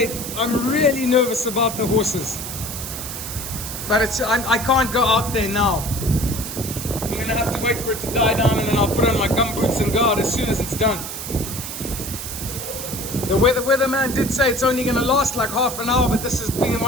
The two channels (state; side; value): noise; right; hiss, 7 dB below the sound